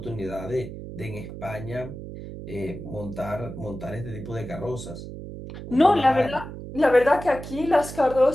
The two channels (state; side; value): noise; right; hum, 10 dB below the sound